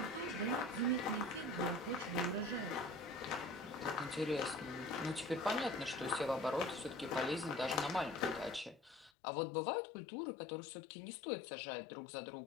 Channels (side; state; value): right; drops out; at 9.1 s